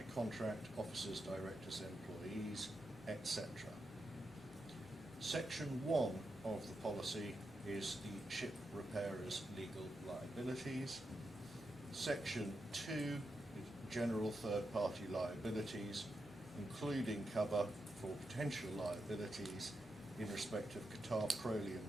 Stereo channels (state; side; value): normal; both; correlation 0.86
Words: contract, officers, directors, employees, etc. Section 1 of the policy is the ship repairer's legal liabilities. Section 2 is general third-party liabilities, including cover for potential liabilities in respect of Qatar